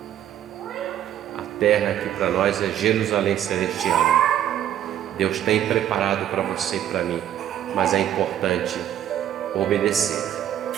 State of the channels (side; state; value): left; quieter; 11.1 dB